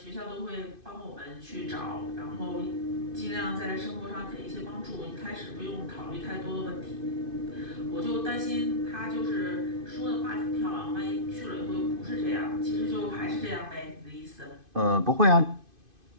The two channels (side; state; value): left; late; 2.5 ms